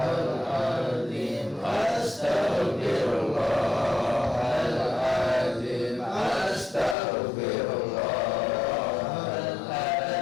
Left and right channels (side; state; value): right; drops out; at 7.0 s